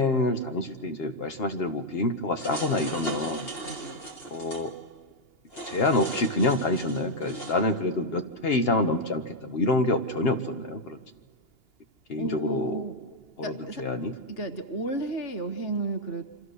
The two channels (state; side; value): late; right; 2.8 ms